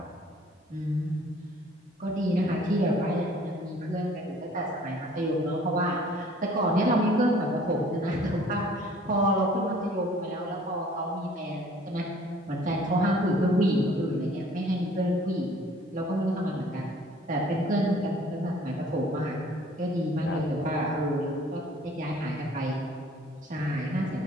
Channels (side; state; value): both; normal; correlation 0.54